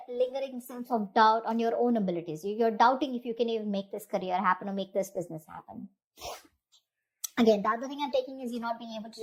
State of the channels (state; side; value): identical; both; correlation 1.00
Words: lingering sense of doubt on your own abilities. You're doubting if you can even make this career happen or make this business happen. Again, the other thing I'm taking is you're not being able to